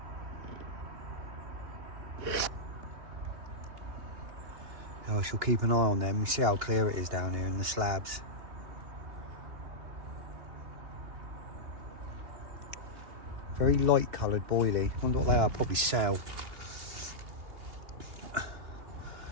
I shall keep an eye on them. You see how clear it is down here in the slabs. Very light coloured boilie. Wonder what they are. Probably cell. Let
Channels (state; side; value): late; left; 2.8 ms